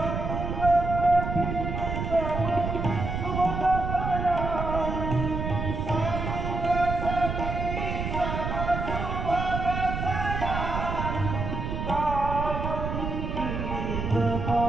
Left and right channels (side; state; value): right; noise; rumble, 3 dB below the sound